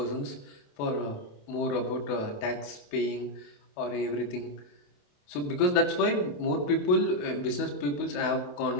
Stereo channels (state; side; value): late; right; 28 ms